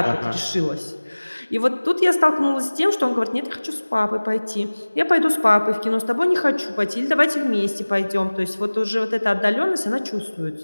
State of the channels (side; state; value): both; inverted; correlation -1.00